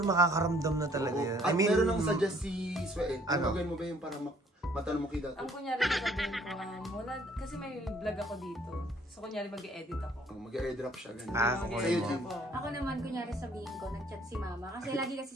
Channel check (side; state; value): both; normal; correlation 0.60